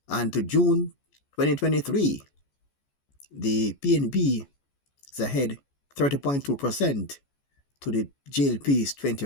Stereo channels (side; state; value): right; late; 14 ms